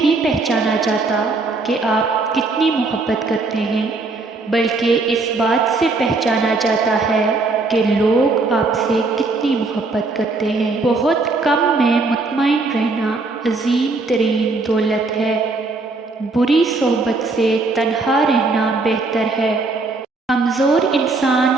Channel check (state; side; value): quieter; left; 3.5 dB